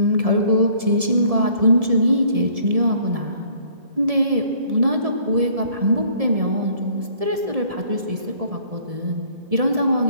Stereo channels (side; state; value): left; late; 1.7 ms